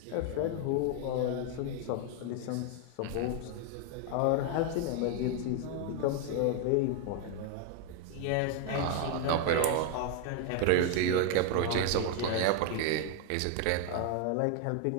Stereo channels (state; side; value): different; both; correlation 0.01